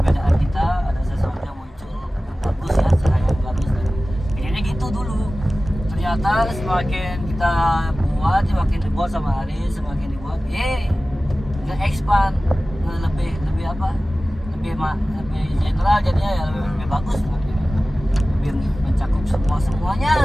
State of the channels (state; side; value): normal; both; correlation 0.96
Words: kita ada sesuatu yang muncul yang bagus ya, cahaya yang bagus dan pengennya gitu dulu. Ternyata semakin kita buat, semakin dibuat sama Aris, semakin dibuat, nggak expand, lebih apa? Lebih general jadinya ya lebih bagus, lebih mencakup